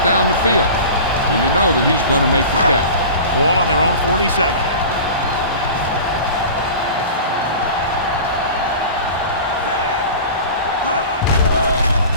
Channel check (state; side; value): inverted; both; correlation -0.36